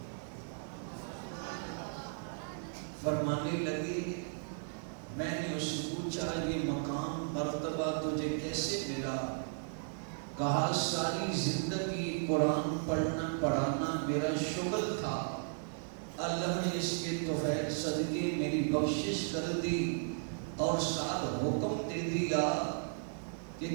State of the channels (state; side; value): silent; left; digital silence